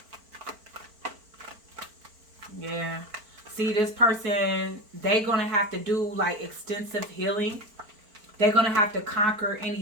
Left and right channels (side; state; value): left; late; 4.4 ms